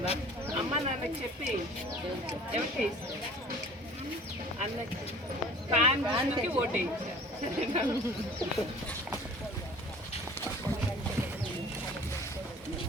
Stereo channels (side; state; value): both; normal; correlation 0.46